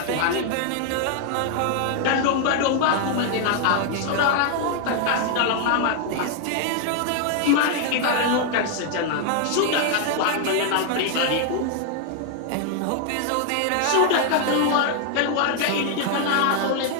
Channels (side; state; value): both; different; correlation 0.00